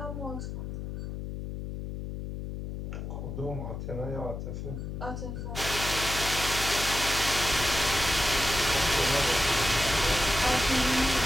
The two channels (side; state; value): left; noise; hum, 6 dB below the sound